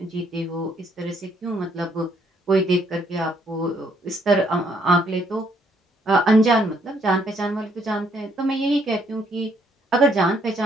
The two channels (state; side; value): normal; both; correlation 0.69